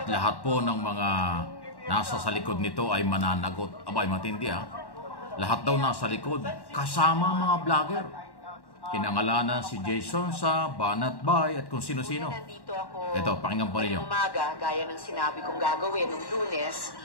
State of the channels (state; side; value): late; right; 1.1 ms